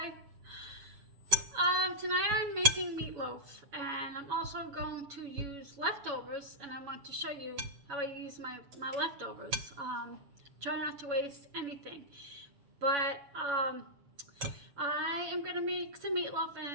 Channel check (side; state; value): left; late; 7.1 ms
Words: Tonight I'm making meatloaf, and I'm also going to use leftovers, and I want to show you how I use my leftovers. Try not to waste anything. But I am going to make some meatloaf,